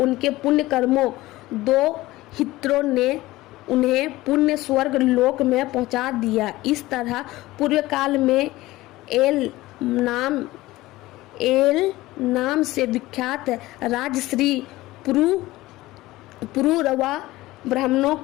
पुण्य कर्मों दो हित्रों ने उन्हें पुण्य स्वर्ग लोक में पहुंचा दिया। इस तरह पूर्व काल में एल नाम से विख्यात राजश्री पुरुरवा ब्राह्मणों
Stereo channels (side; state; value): right; quieter; 18.1 dB